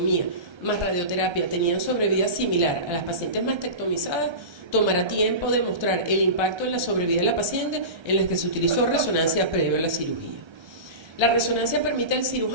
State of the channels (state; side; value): late; left; 1.3 ms